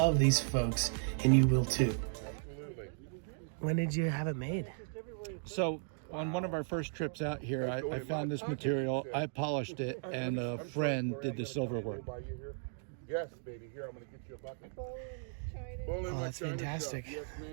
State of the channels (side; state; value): left; silent; digital silence